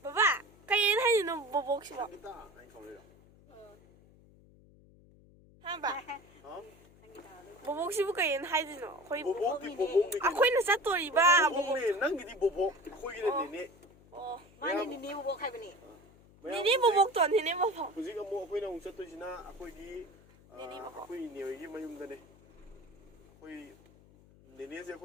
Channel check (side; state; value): left; noise; hum, 26 dB below the sound